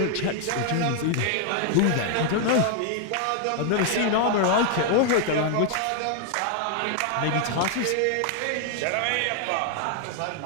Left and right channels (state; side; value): different; both; correlation 0.00